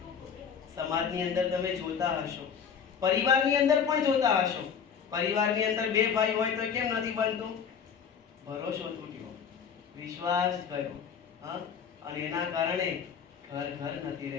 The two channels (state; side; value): quieter; right; 7.1 dB